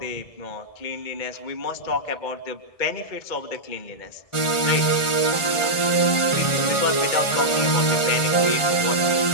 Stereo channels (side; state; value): right; late; 1.4 ms